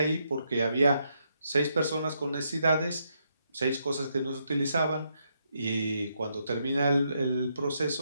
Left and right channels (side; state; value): both; inverted; correlation -0.78